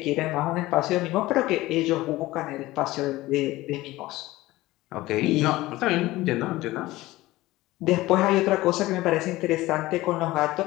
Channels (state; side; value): quieter; right; 18.1 dB